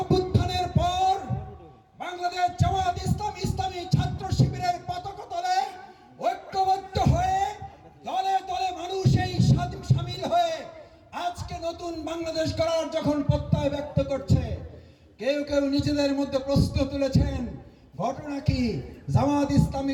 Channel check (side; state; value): both; identical; correlation 1.00